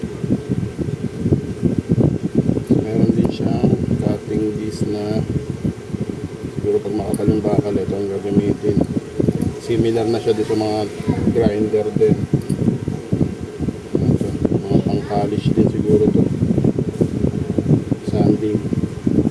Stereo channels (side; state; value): both; identical; correlation 1.00